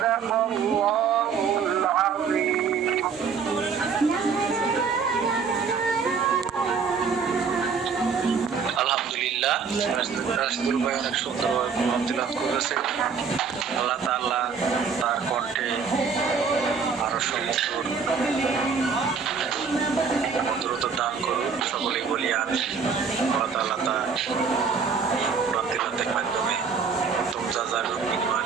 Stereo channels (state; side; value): quieter; left; 5.8 dB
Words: الله العظيم. আলহামদুলিল্লাহ, রাশিদুল ভাই অনেক সুন্দরভাবে কোরআন তিলাওয়াত করেছে। আল্লাহ তাআলা তার কণ্ঠে আরো সুমধুর মধুরতা দান করুন, সকলেই বলি আমিন। আল্লাহ তাআলা তার কোরআন তিলাওয়াতের মাধ্যমে উত্তম জাযার বিনিময়